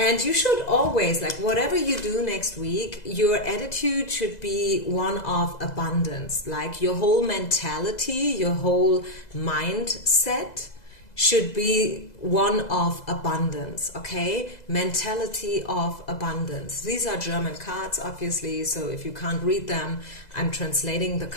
you should always, like whatever you do next week, your attitude should be one of abundance. Like your whole mentality, your whole mindset should be one of abundance, okay? Mentality of abundance. These are German cards, obviously, so if you can't read them, I'm translating the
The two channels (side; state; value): right; late; 2.0 ms